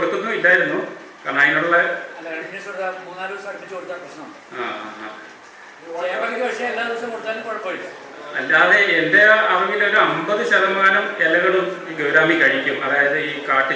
ഇല്ലായിരുന്നു. കാരണം അതിനുള്ള അല്ലാതെ എൻ്റെ അറിവിലൊരു 50% ഇലകളും ഈ ഗൗരാമി കഴിക്കും. അതായത് ഈ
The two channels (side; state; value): both; identical; correlation 1.00